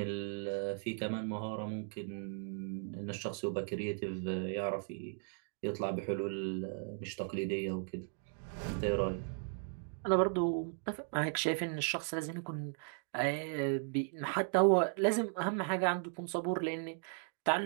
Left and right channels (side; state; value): left; silent; 53 dB below the other